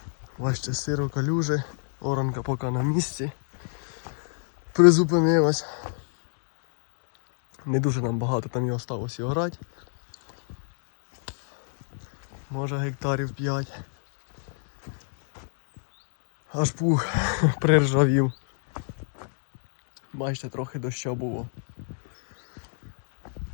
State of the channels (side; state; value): right; silent; digital silence